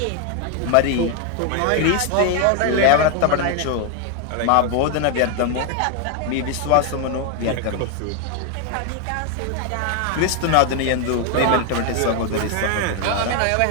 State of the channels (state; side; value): different; both; correlation 0.01